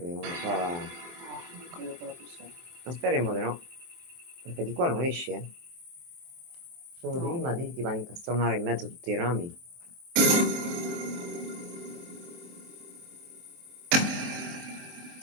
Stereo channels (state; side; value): late; left; 23 ms